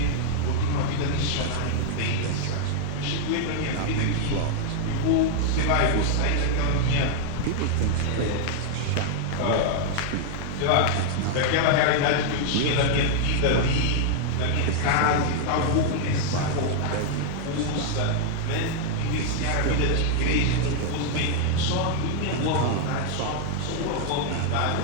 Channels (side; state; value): both; different; correlation 0.00